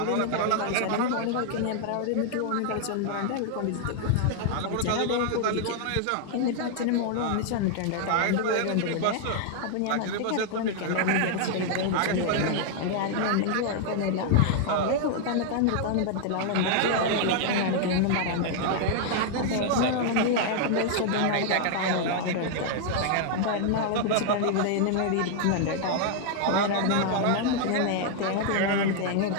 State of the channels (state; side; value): different; both; correlation 0.00